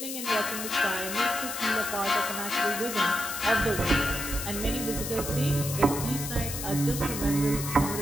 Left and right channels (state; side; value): noise; left; hiss, 6 dB below the sound